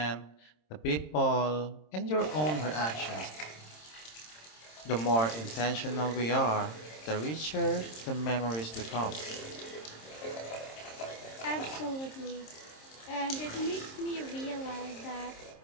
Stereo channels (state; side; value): late; right; 26 ms